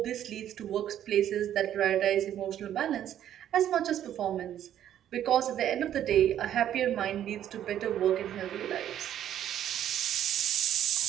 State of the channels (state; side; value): quieter; left; 10.9 dB